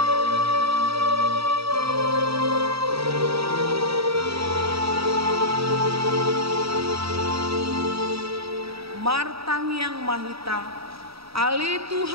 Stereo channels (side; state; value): left; late; 0.77 ms